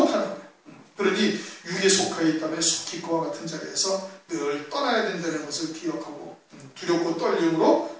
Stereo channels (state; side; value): identical; both; correlation 1.00